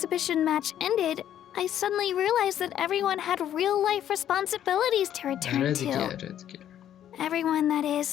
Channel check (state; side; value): quieter; right; 10.8 dB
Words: match ended, I suddenly realized that everyone had real-life responsibilities to آره return دیگه to. آره دیگه. Everyone, that is,